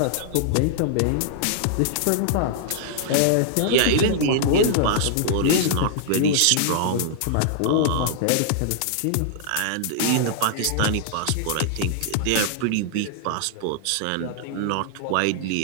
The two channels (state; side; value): different; both; correlation -0.01